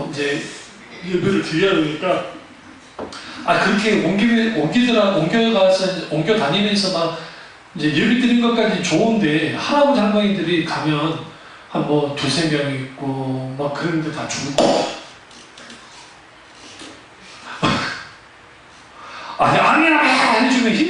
이제 예배를 드려야 되니까 그렇게 옮겨 다니면서 막 이제 예배 드린 것까지 좋은데 할아버지 할머니들이 가면 한 뭐 두세 명 있고 막 그런데 다 죽고 아니야 해주면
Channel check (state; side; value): identical; both; correlation 1.00